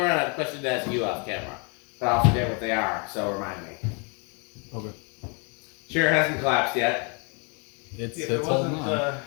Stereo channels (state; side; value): quieter; right; 35.3 dB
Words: and I have a question to ask you off camera. But I'll forget what they are, so remind me. Okay. Sure, it hasn't collapsed yet. It's If it holding wasn't, on.